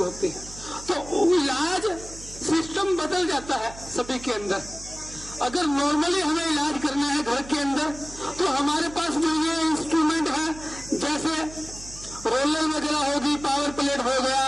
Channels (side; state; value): right; noise; hum, 16 dB below the sound